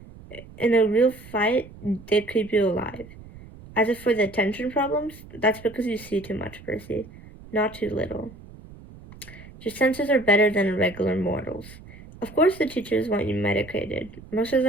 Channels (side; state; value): right; noise; rumble, 19 dB below the sound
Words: In a real fight, they keep you alive. As if for the attention problems, that's because you see too much, Percy, not too little. Your senses are better than a regular mortal's. Of course the teachers want you medicated. Most of